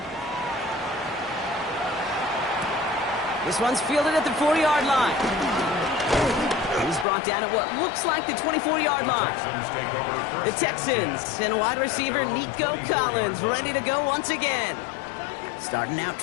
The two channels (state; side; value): drops out; right; at 7.1 s